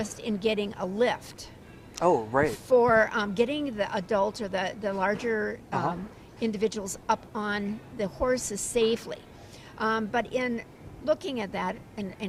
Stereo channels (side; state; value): both; identical; correlation 1.00